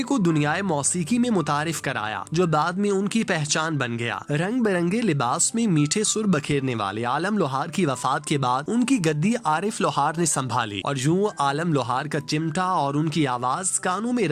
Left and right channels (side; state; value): both; identical; correlation 1.00